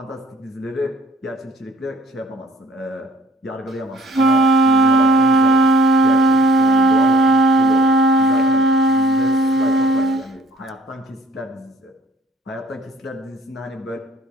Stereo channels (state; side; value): normal; both; correlation 0.58